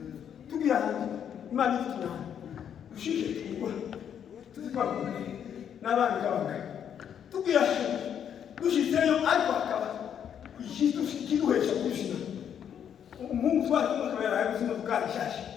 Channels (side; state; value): right; quieter; 8.8 dB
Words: tugiye hantu imana ituna ushike tugwa tuzikwa n'abandi kabanga tugiye dushitseyo ariko akaba ikitu kiduhesha kushina umuntu twari kumukabera yabuzima bwashashe